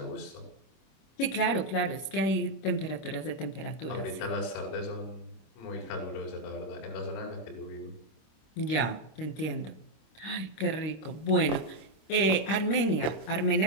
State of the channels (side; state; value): right; late; 26 ms